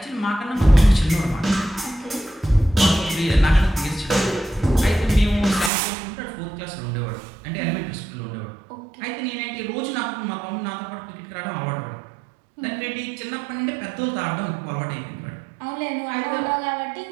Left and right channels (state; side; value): drops out; left; at 5.7 s